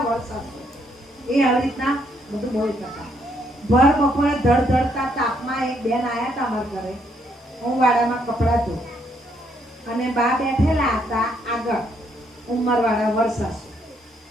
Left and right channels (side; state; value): both; normal; correlation 0.72